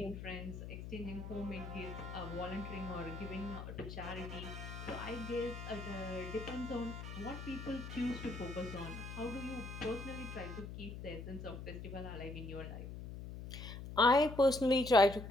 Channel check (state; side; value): noise; left; hum, 9 dB below the sound